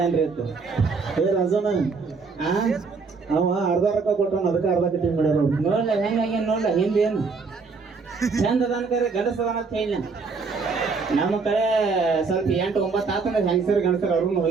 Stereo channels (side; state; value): left; quieter; 4.7 dB